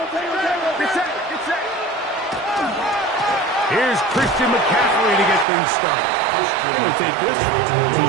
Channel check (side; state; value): left; drops out; at 5.5 s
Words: Here's Christian McCaffrey to get things started. And he'll take this to